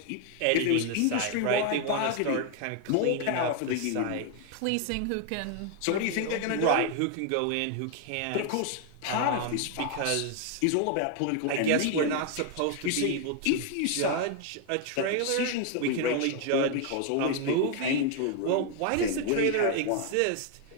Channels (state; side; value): different; both; correlation 0.00